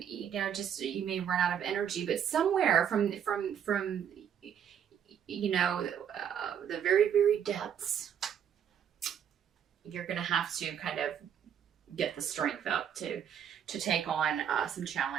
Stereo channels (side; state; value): left; quieter; 8.7 dB